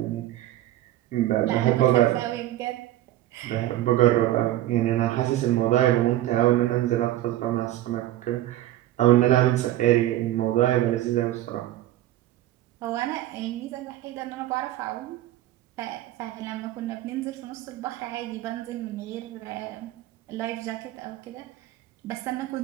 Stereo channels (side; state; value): left; quieter; 14.4 dB